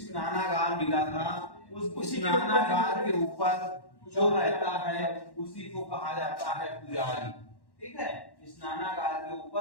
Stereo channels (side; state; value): right; late; 1.1 ms